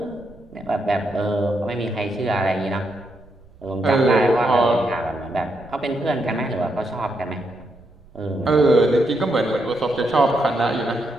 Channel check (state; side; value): noise; right; rumble, 25 dB below the sound